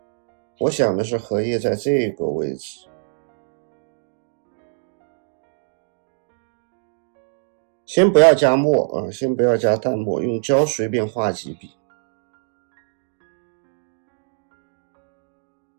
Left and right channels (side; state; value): left; silent; digital silence